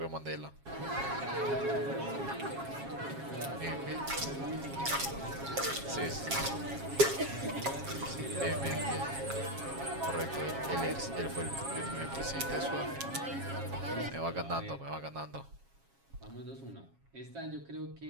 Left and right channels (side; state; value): left; late; 7.3 ms